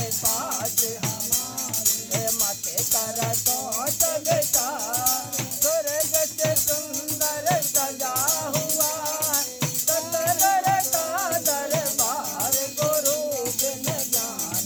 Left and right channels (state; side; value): identical; both; correlation 1.00